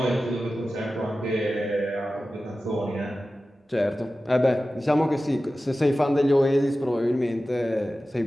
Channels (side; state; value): both; normal; correlation 0.95